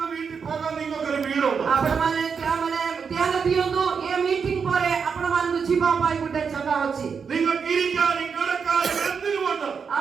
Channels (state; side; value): quieter; left; 6.1 dB